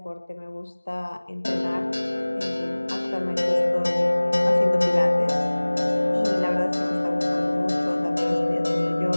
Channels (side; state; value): both; inverted; correlation -1.00